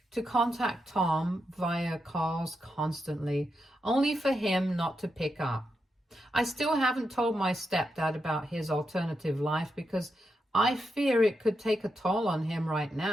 to contact Tom via calls constantly, only for him not to pick up. I still haven't told my stepdad about his alternative life because I fear it could take a toll on him right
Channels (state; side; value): normal; both; correlation 0.85